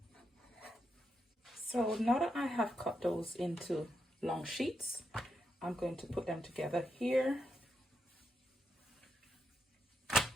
So now that I have cut those into long sheets, I'm going to put them together here.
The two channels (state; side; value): normal; both; correlation 0.83